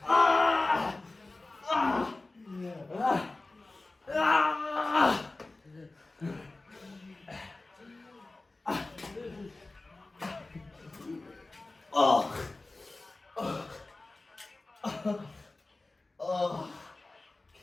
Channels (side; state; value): right; quieter; 3.1 dB